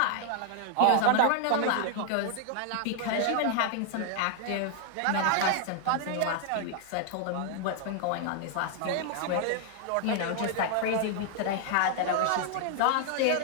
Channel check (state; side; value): different; both; correlation 0.00